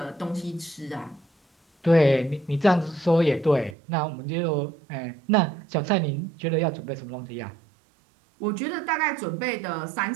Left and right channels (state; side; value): drops out; left; at 3.8 s